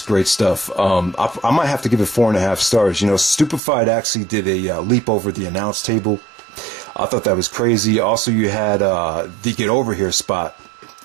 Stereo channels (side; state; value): left; drops out; at 3.6 s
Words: great stuff. I might have to give it 4.5 stars. You know, Stupefied actually did a leap over the announce table. I thought that was crazy. Also, you had the Get Over Here spot